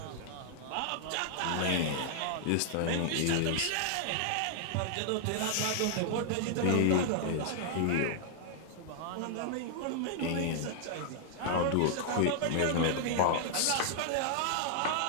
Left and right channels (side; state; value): both; different; correlation -0.01